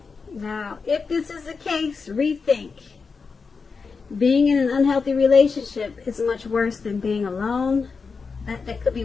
Now, if this is the case, rethink. Being in an unhealthy relationship is much worse than being alone. That could be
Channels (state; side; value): quieter; right; 5.0 dB